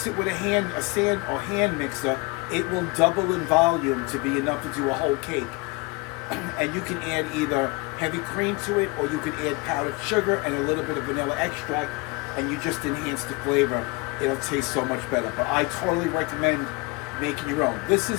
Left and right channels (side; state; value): right; quieter; 26.1 dB